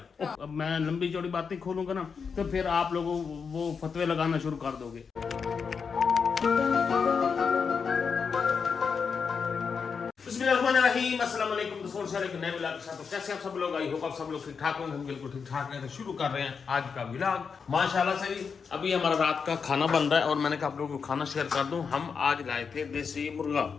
अब मैं लंबी चौड़ी बातें खोलूंगा ना तो फिर आप लोगों वो फतवे लगाना शुरू कर दोगे। अस्सलाम वालेकुम दोस्तों, एक नए व्लॉग के साथ। तो कैसे आप सब लोग, आई होप आप सब लोग ठीक ठाक होंगे। हम बिल्कुल ठीक ठाक हैं। तो शुरू कर रहे हैं आज का व्लॉग माशाल्लाह से। अभी हमारा रात का खाना बन रहा है और मैंने कहा आप लोगों को खाना शेयर कर दूं। हम आज लाए थे देसी मुर्गा।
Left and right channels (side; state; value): right; quieter; 5.9 dB